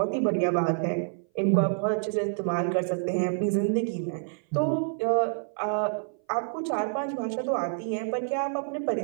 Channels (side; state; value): left; silent; 58 dB below the other